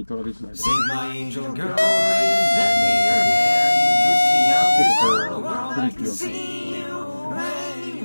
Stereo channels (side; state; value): both; inverted; correlation -1.00